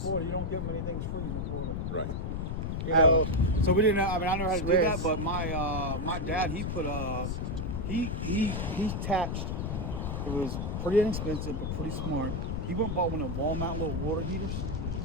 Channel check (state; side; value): noise; left; rumble, 2 dB below the sound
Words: You don't get many things freeze in Florida. Right. You know, so we didn't know. I mean, I know how to do that, Swiss. but my dad, he put he attached. It was pretty inexpensive, but pretty smart. He went and bought one of the wall mount little water heaters.